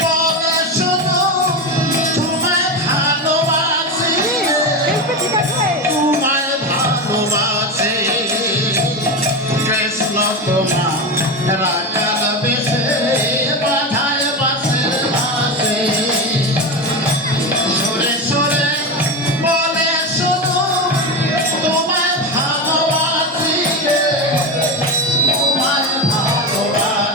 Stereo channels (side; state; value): both; normal; correlation 0.18